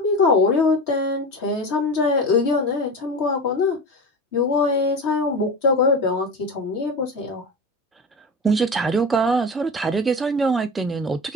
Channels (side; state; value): both; normal; correlation 0.27